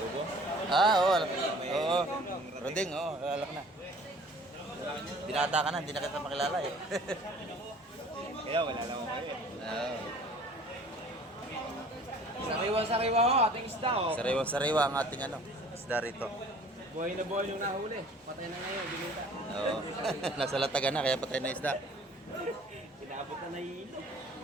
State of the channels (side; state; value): both; normal; correlation 0.50